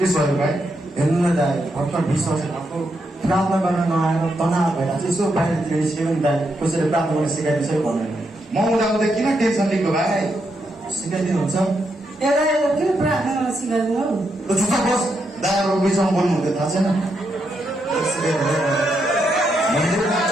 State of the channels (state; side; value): normal; both; correlation 0.81